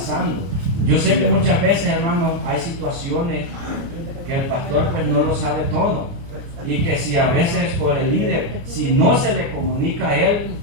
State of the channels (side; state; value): left; late; 29 ms